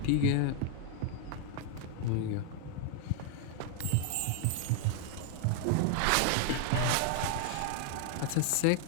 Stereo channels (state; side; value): different; both; correlation 0.00